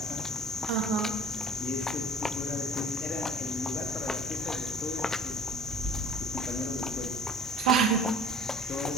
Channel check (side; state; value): both; normal; correlation 0.47